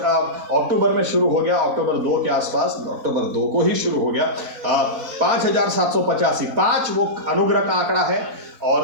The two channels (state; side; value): late; left; 4.1 ms